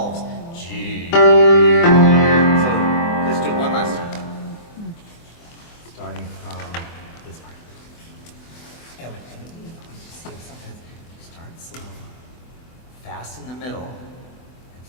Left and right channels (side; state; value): right; late; 24 ms